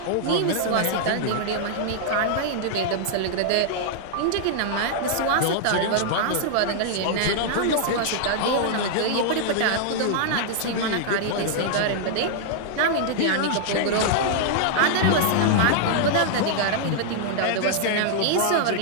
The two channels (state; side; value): different; both; correlation -0.01